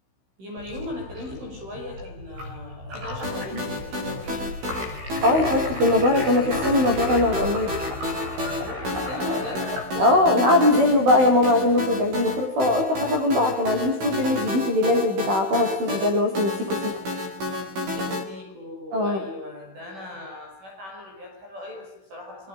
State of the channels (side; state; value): left; late; 16 ms